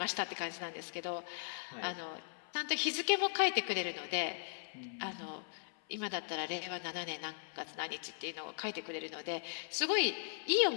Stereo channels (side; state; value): right; silent; 52 dB below the other